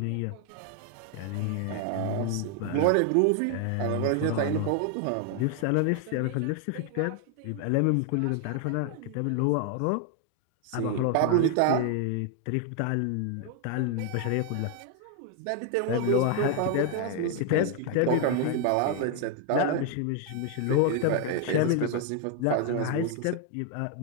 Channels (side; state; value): both; different; correlation 0.01